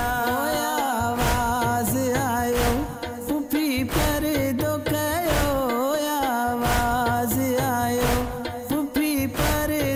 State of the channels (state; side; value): identical; both; correlation 1.00